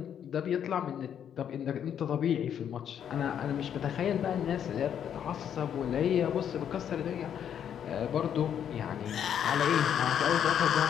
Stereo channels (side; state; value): right; quieter; 9.0 dB